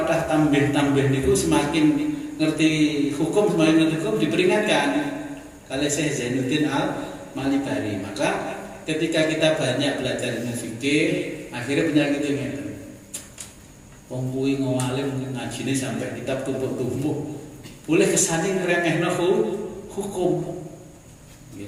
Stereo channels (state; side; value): identical; both; correlation 1.00